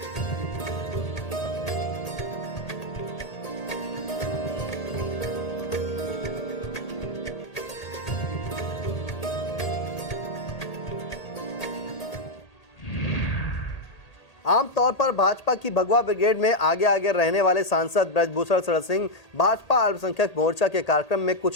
आमतौर पर भाजपा की भगवा ब्रिगेड में आगे आगे रहने वाले सांसद ब्रजभूषण शरण सिंह भाजपा अल्पसंख्यक मोर्चा के कार्यक्रम में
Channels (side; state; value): right; late; 1.8 ms